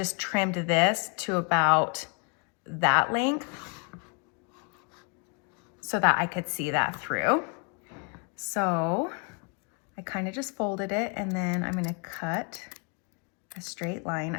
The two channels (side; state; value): right; quieter; 37.2 dB